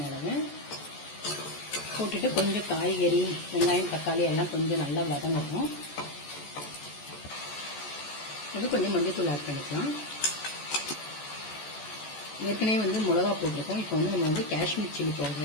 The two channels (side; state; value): right; late; 14 ms